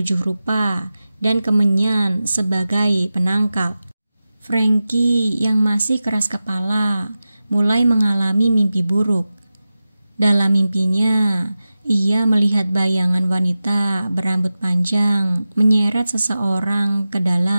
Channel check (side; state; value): both; inverted; correlation -0.94